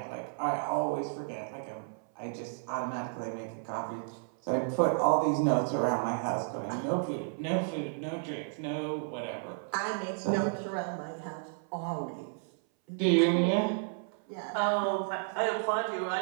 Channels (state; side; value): silent; left; 56 dB below the other